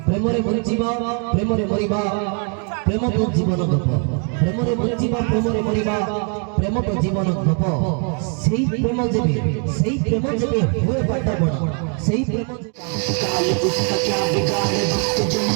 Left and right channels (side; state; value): left; quieter; 39.8 dB